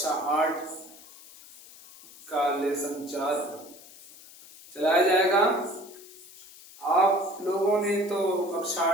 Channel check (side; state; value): left; noise; hiss, 20 dB below the sound